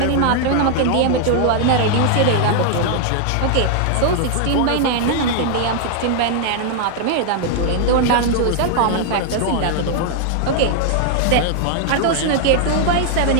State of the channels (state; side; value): different; both; correlation 0.00